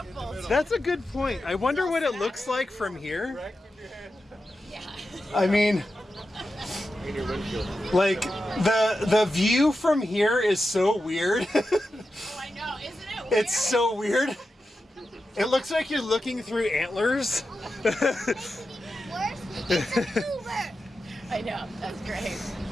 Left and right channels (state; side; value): normal; both; correlation 0.90